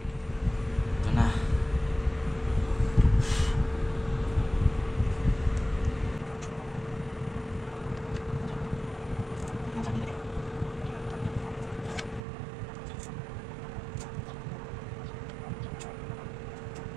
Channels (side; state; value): left; drops out; at 12.2 s